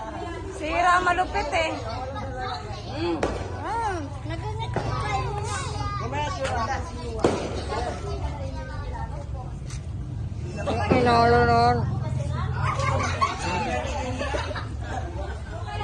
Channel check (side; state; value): both; identical; correlation 1.00